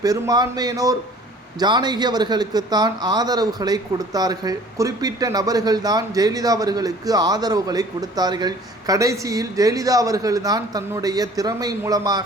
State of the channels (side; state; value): both; normal; correlation 0.50